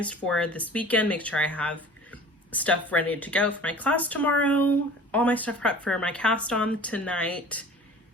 for this weekend, make sure I have stuff ready to go for my class tomorrow, all my stuff prepped for my cast on tonight,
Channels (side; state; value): both; normal; correlation 0.43